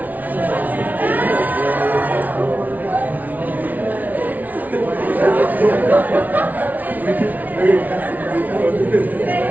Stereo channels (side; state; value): left; late; 0.077 ms